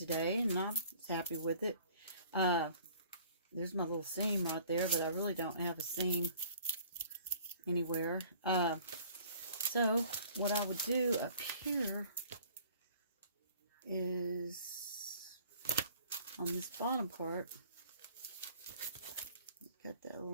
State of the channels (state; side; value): inverted; both; correlation -0.53